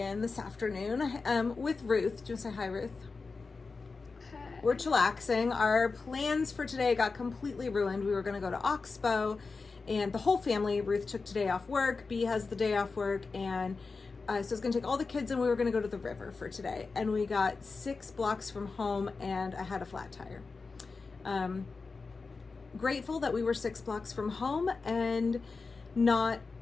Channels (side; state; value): right; quieter; 4.3 dB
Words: this afternoon with Ruth. Do you want to say hi, Ruth? Hi. We're chillaxing. Our plans for today got completely ruined. We were going to go to Oxbow and the whole family, Ruth took today off work, B has the day off work, and so I was going to take all the kids and we were going to go to the river for today. And we got 6 blocks from home and I had a flat tire. Grateful that we were 6 blocks from home and not,